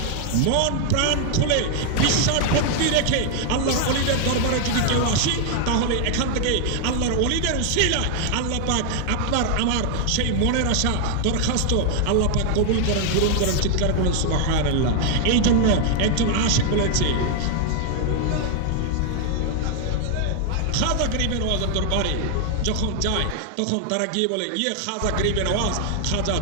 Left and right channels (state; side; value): different; both; correlation 0.00